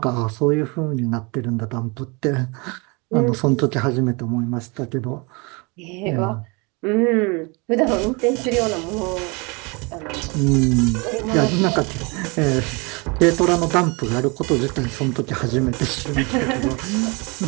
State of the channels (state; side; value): quieter; left; 29.1 dB